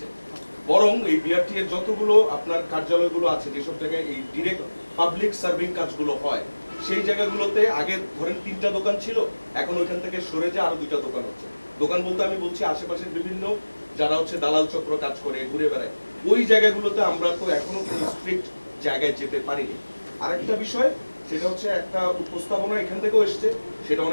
বরং এই বিআরটি এর যতগুলো আপনার কার্যালয়গুলো আছে, যেসব জায়গায় এই ডিরেক্ট পাবলিক সার্ভিং কাজগুলো হয়, সেই জায়গাগুলোতে আগে ধরেন 3টা দোকান ছিল, এখন ওইখান থেকে সরে যে আরো 2টা দোকান হচ্ছে। দোকান বলতে আমি বলছি আশেপাশের বিভিন্ন যারা দালাল চক্র কাজ করে ঘুরে বেড়ায়, ওই জায়গাগুলোতে আমরা তো এখনো কোনো স্ট্রিক্ট জায়গায় যেতে পারিনি। আরেকটা বিষয়, সেটা হচ্ছে একটা উপস্থাপনা এখান থেকেও এসছে, সেটা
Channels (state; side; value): inverted; both; correlation -1.00